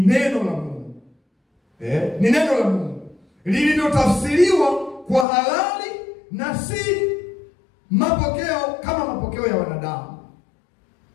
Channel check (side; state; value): right; drops out; at 5.2 s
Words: la Mungu. Ni neno la Mungu lililotafsiriwa kwa halali na si mapokeo kama mapokeo ya wanadamu.